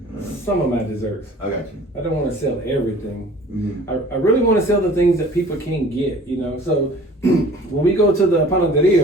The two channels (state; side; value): normal; both; correlation 0.48